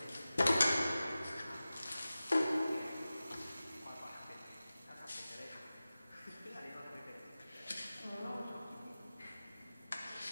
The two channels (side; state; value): both; inverted; correlation -0.96